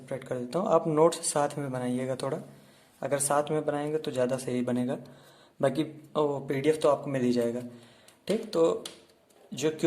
कर देता हूँ, आप नोट्स साथ में बनाइएगा थोड़ा। अगर साथ में बनाएंगे तो ज़्यादा सही बनेगा, बाकी पीडीएफ तो आपको मिल ही जाएगा। ठीक, तो जो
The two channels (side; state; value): both; identical; correlation 1.00